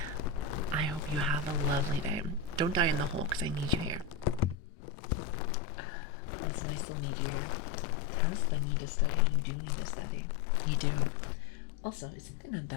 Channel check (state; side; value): drops out; right; at 4.5 s